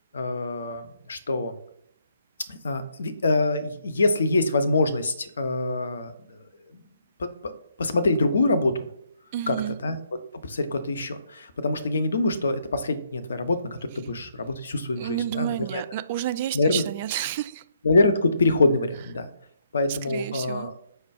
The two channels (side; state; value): both; inverted; correlation -0.73